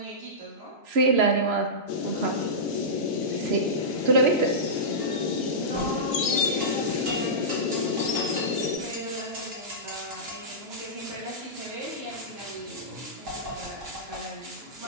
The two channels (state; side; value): late; left; 3.0 ms